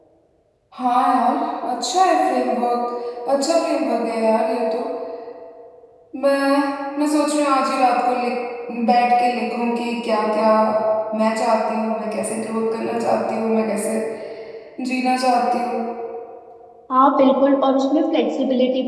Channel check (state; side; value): identical; both; correlation 1.00